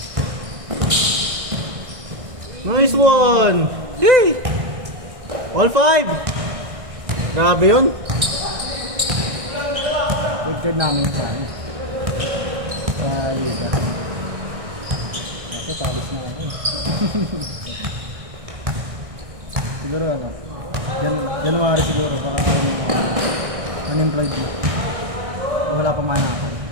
Nice one! Yay! All 5! Grabe yun! Good card namin sa ano. Sa liga. Kasi palis na ako. Siguro ano. January siguro. Baka unemployed na. Wala pa man ako.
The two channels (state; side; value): late; left; 1.6 ms